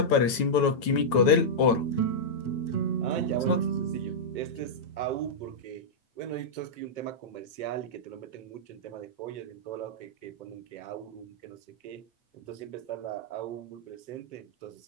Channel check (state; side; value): late; right; 9.1 ms